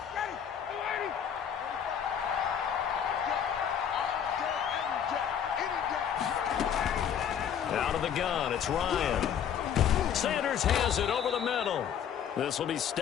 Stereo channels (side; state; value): right; quieter; 8.6 dB